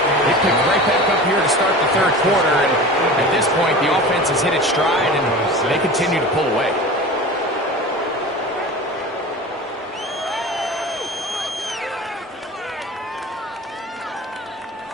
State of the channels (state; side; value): normal; both; correlation 0.35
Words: they picked right back up here to start the third quarter, and at this point, the offense has hit its stride, and they continue to pull away.